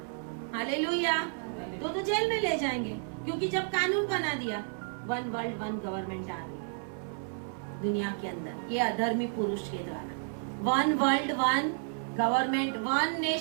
हालेलुया। तो जेल में ले जाएंगे, क्योंकि जब कानून बना दिया, वन वर्ल्ड वन गवर्नमेंट आ रही है दुनिया के अंदर, ये अधर्मी पुरुष के द्वारा। One world one government, one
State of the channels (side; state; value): left; silent; 57 dB below the other